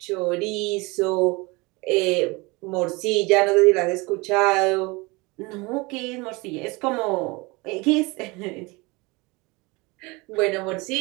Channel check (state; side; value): quieter; left; 25.3 dB